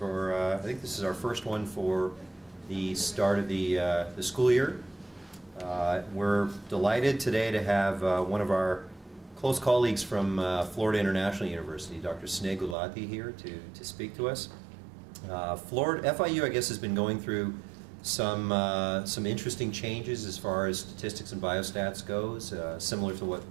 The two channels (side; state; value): left; drops out; at 12.8 s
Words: I think this is our first one for the start of the school year. We're delighted today to have one of our close colleagues from Florida International University, Dr. Sneh Gulati, here to speak to us. FIU, I guess, has been going through some interesting changes as far as statistics and biostats goes, similar to what